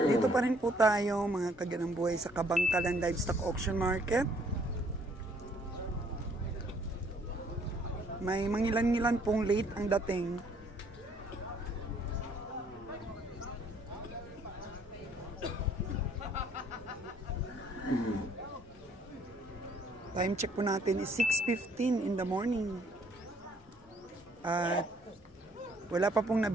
Dito pa rin po tayo mga kaganang buhay sa Kabangkalan Livestock Auction Market. May mangilan-ngilan pong late ang dating. Time check po natin is 6:15 in the morning. At wala pa pong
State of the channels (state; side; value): normal; both; correlation 0.63